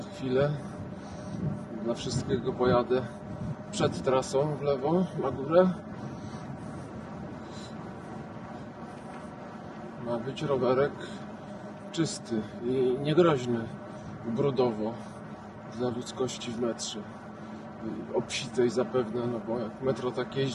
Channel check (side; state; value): both; identical; correlation 1.00